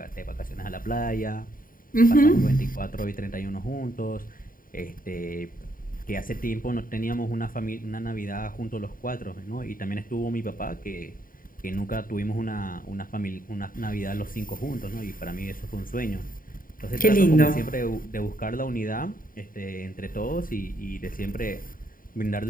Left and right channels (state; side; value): late; right; 0.41 ms